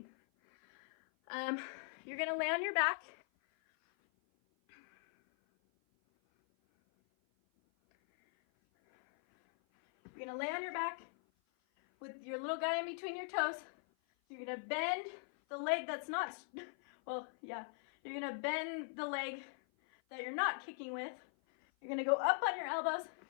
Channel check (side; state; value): right; silent; 51 dB below the other